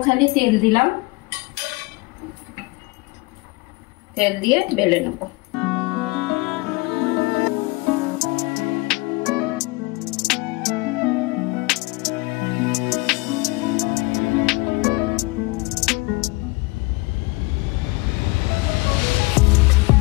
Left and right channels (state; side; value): quieter; right; 24.6 dB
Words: খালি তেল দিলাম, তেল দিয়ে বেলে নেব।